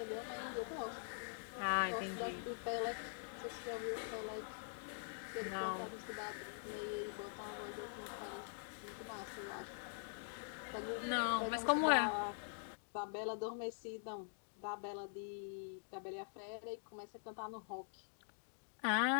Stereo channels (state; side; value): silent; right; digital silence